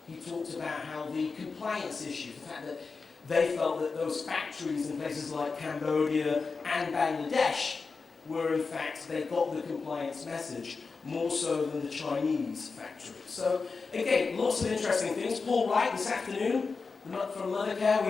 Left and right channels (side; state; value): right; quieter; 4.6 dB